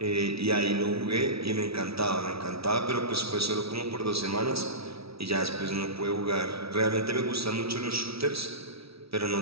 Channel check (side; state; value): left; late; 0.76 ms